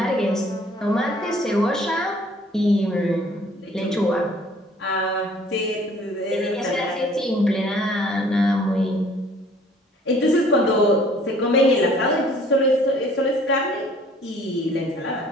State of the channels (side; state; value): both; normal; correlation 0.55